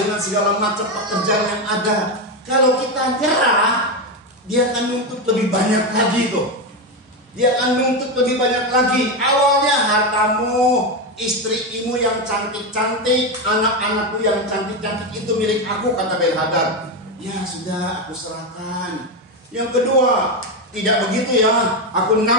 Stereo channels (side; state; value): both; normal; correlation 0.11